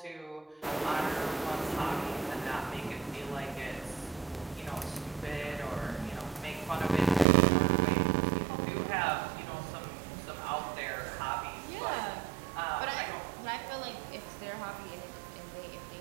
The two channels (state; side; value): drops out; left; at 7.2 s